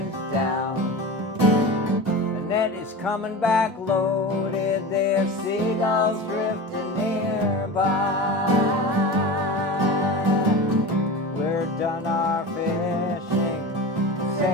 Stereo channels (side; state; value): both; normal; correlation 0.29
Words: down. The net is coming back loaded. There's seagulls drifting nearby. We're done our fishing.